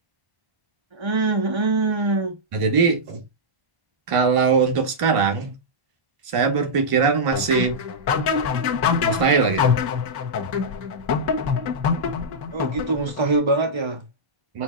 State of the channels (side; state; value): left; late; 1.5 ms